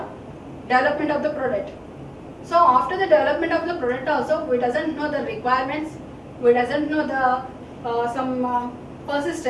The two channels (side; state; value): both; identical; correlation 1.00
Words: development of the product. So after the development of the product also, we doesn't know the requirements, we doesn't know the some